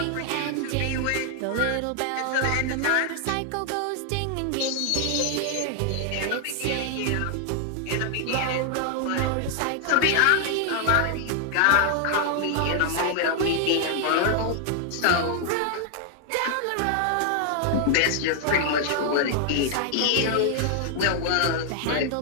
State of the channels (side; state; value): both; different; correlation 0.00